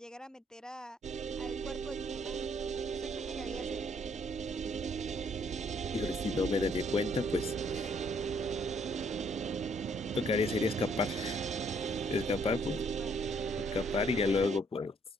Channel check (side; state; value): both; normal; correlation 0.67